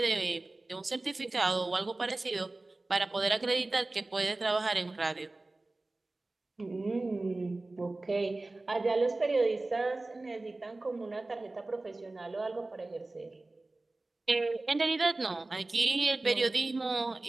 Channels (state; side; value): quieter; left; 3.0 dB